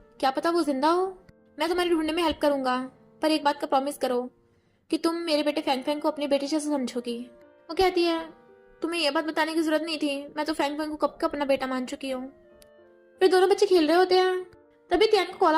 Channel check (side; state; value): both; identical; correlation 1.00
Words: क्या पता वो जिंदा हो। मैं तुम्हारे ढूंढने में हेल्प करूंगा पर एक बात का प्रॉमिस करो कि तुम मेरे बेटे फैंग फैंग को अपने बेटे जैसे समझोगी। वो कहती है तुम्हें यह बात बताने की जरूरत नहीं थी, मैं तो फैंग फैंग को कब का अपना बेटा मान चुकी हूँ। फिर दोनों बच्चे खेल रहे होते हैं तभी त्यान को कॉल